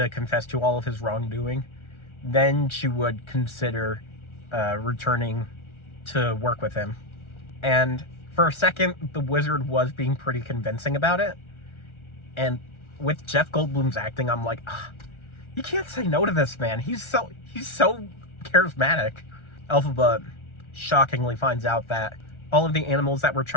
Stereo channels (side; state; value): right; late; 1.4 ms